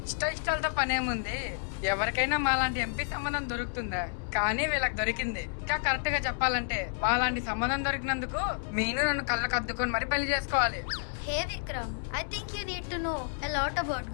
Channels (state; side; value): silent; right; 58 dB below the other